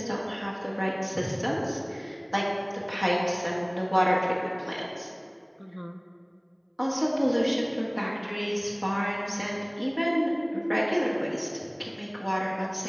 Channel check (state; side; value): identical; both; correlation 1.00